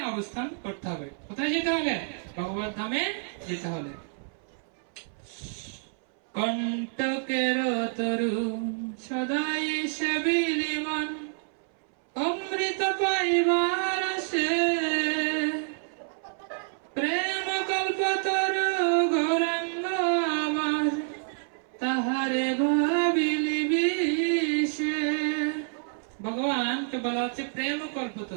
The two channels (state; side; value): silent; left; 59 dB below the other